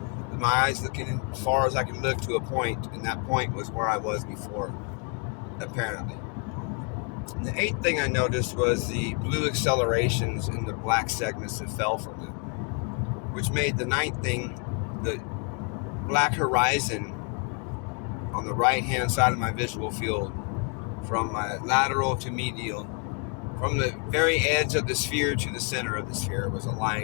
with my eyes looking as far as I could look to a point, and that point was where I was before, apparently. And the eighth thing I noticed was the blue accelerations in the black segments that fell from it, which made the ninth thing the black horizon on the right-hand side of my visual field, from my lateral to medial. From the very edge of the sphere to the center of the sphere was a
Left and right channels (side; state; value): right; quieter; 35.4 dB